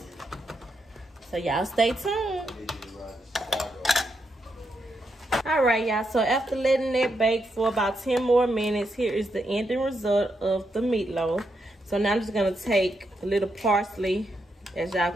So y'all stay tuned. All right, y'all, so after letting that bake for about 10 more minutes, here is the ending result of the meatloaf. So now I'm just gonna take a little parsley. As y'all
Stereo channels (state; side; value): normal; both; correlation 0.82